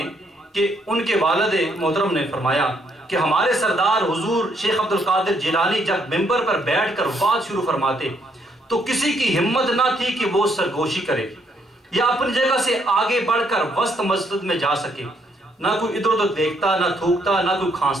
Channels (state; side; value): normal; both; correlation 0.72